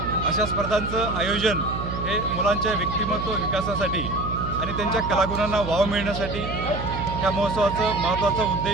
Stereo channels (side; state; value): right; noise; hum, 6 dB below the sound